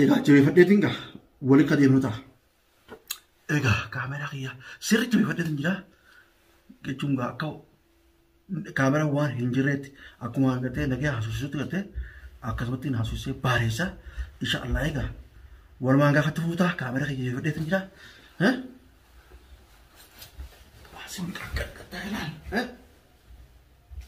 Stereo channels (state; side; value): identical; both; correlation 1.00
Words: جوي فديتينغا ولي كديمنوتا ايغا كاميرا خيا سيري جوي فديتينجا كچونغا كاو كاميرا وان هنجريت اكو غته نغي حسوسوت غته اكسبتين حسوسي باريسا ان شاء الله ايغا ولمانغا خطفوتا كاميرا خيا جوي فديتينجا ها واسم كاكتايلان ها